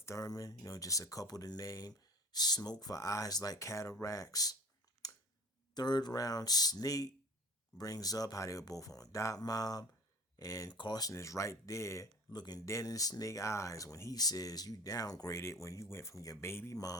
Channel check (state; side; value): normal; both; correlation 0.41